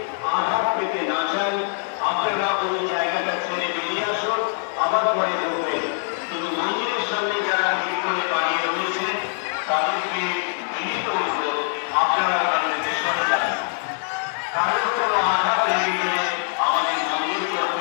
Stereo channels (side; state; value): right; silent; 58 dB below the other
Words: আঘাত পেতে না চান, আপনারা ওই জায়গাটা ছেড়ে বেরিয়ে আসুন, আবার পরে করবেন। কিন্তু মন্দিরের সামনে যারা ভিড় করে দাঁড়িয়ে রয়েছে, তাদেরকে বিনীত অনুরোধ, আপনারা ওখান থেকে সরে যান। কারোর কোনো আঘাত লেগে গেলে আমাদের মন্দির